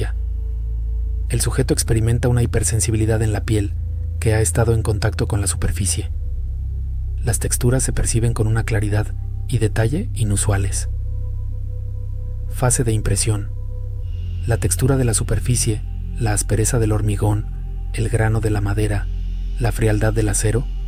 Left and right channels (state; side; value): identical; both; correlation 1.00